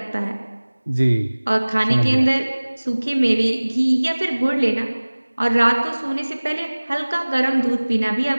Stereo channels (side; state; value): both; inverted; correlation -1.00